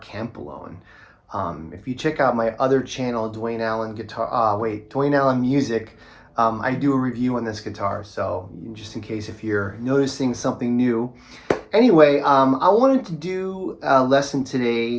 Campolone. If you check out my other channel, Dwayne Allen Music, I do a review on this guitar, so just in case if you're noticing something new. Anyway, I wanted to do a lesson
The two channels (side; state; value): both; identical; correlation 1.00